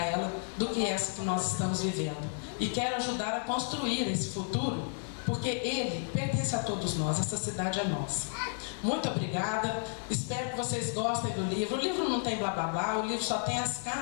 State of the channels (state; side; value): silent; right; 56 dB below the other